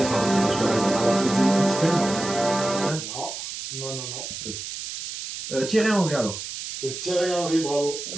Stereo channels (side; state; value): right; noise; hiss, 8 dB below the sound